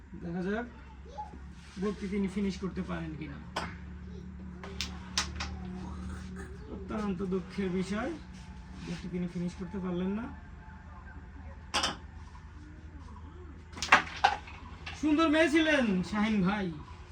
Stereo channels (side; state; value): both; identical; correlation 1.00